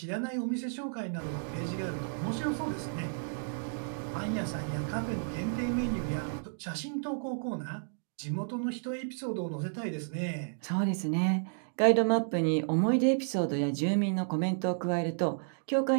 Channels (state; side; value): silent; left; digital silence